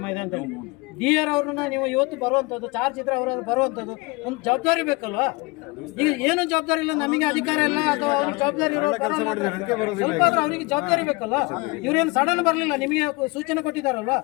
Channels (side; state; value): right; quieter; 25.6 dB